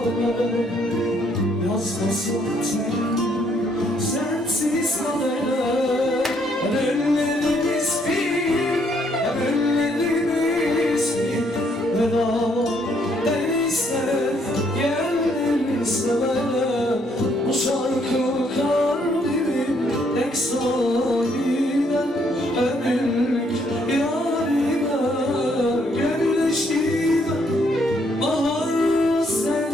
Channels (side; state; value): both; normal; correlation 0.70